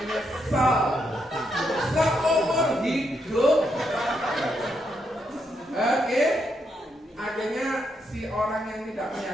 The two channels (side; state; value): both; normal; correlation 0.79